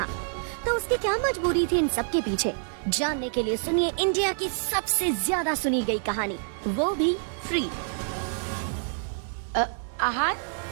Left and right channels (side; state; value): left; silent; 60 dB below the other